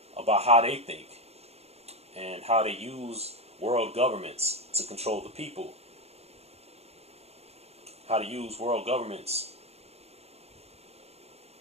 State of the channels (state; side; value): late; left; 0.30 ms